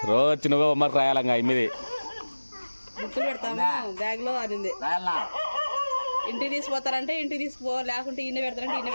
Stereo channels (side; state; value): both; inverted; correlation -1.00